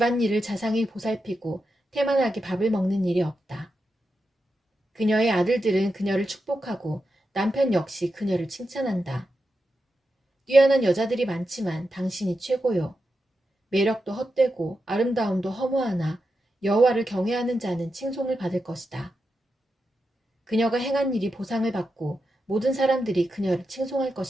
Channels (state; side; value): normal; both; correlation 0.88